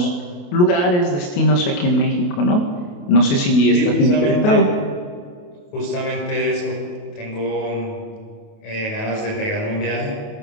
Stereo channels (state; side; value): late; right; 28 ms